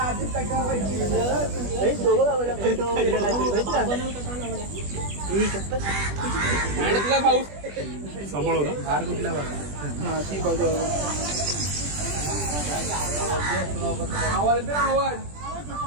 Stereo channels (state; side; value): late; left; 20 ms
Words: सांभाळू ना. हार कुठल्या बाजूला? ती बाजू. आवाज आवाज